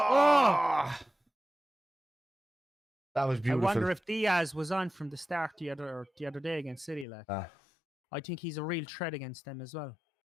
That was beautiful. I wonder if Diaz was on from the start the other day against City. Like, I think he's a real threat against them as well.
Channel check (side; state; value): right; drops out; at 7.1 s